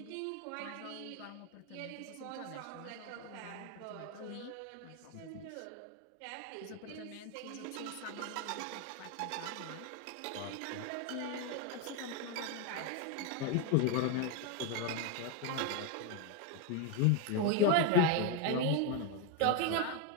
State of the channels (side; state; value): both; different; correlation 0.02